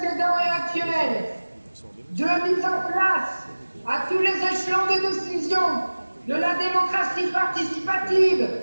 et actuels, de mise en place à tous les échelons de décision de la démocratie participative,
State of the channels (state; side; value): inverted; both; correlation -1.00